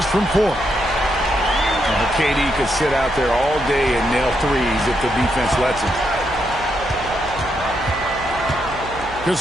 from 4. KD could sit out there all day and nail threes if the defense lets him.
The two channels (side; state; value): right; noise; hum, 15 dB below the sound